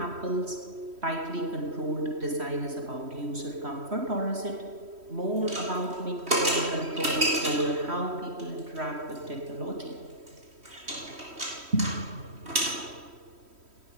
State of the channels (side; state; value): left; late; 3.1 ms